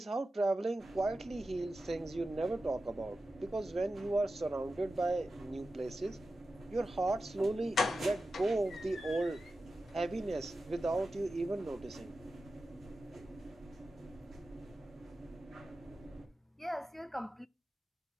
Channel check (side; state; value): both; normal; correlation 0.92